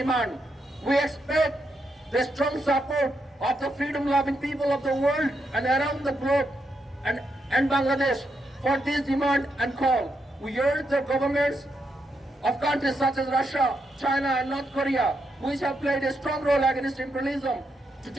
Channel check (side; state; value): both; normal; correlation 0.82